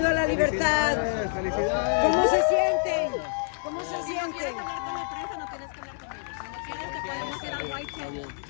a la libertad. ¿Cómo se sienten? ¿Cómo se Si no sienten? quieres hablar con la prensa, no tienes que hablar con ellos. Si no quieres, te podemos ir al White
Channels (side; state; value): right; silent; digital silence